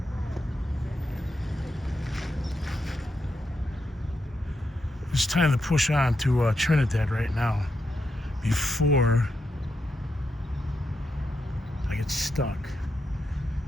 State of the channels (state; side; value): normal; both; correlation 0.84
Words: It's time to push on to Trinidad right now before I get stuck.